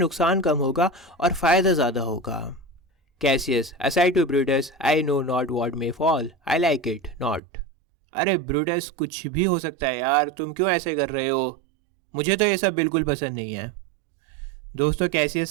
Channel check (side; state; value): left; drops out; at 7.4 s